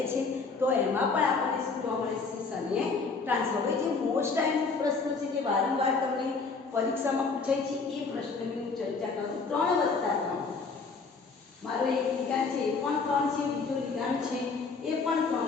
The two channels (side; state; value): right; quieter; 4.5 dB